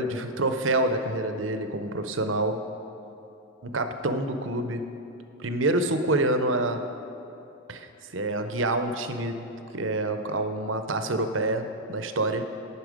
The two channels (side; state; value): both; normal; correlation -0.03